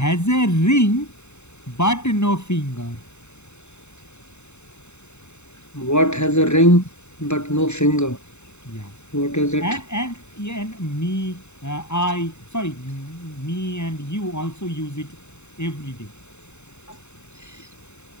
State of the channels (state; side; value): late; right; 0.82 ms